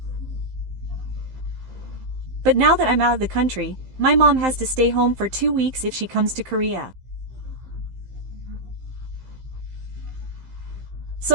But now that I'm out of the country, my mom has to stay home for 2 weeks if she comes to Korea.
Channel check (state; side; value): late; left; 15 ms